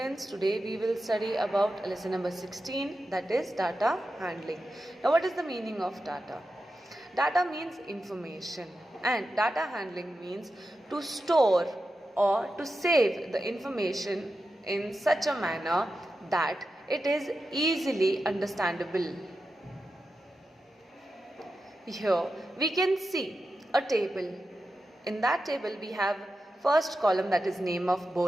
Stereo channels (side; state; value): both; normal; correlation 0.90